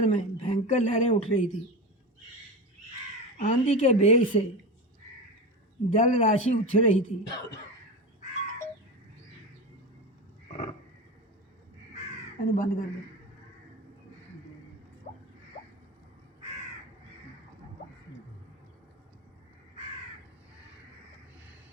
में भयंकर लहरें उठ रही थी। आंधी के वेग से जल राशि उछल रही थी। बंद कर दो।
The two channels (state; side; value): normal; both; correlation 0.23